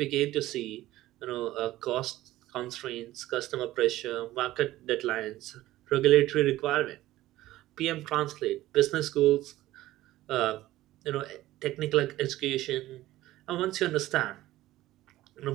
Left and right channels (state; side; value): quieter; left; 15.8 dB